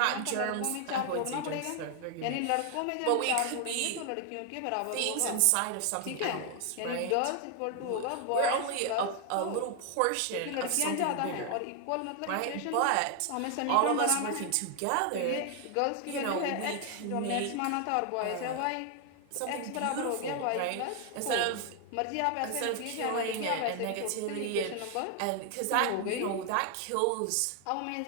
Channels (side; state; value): both; different; correlation 0.00